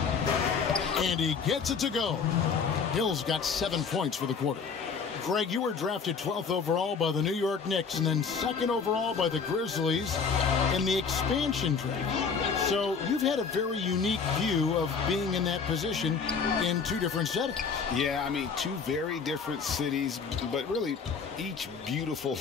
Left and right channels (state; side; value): quieter; right; 5.7 dB